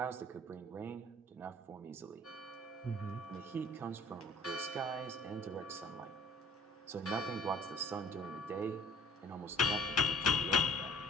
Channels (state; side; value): normal; both; correlation 0.50